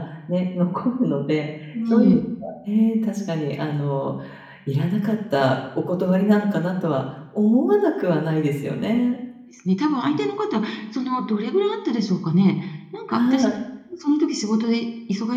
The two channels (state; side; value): identical; both; correlation 1.00